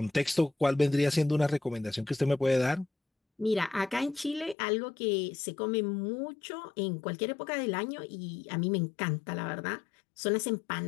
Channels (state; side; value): drops out; right; at 4.5 s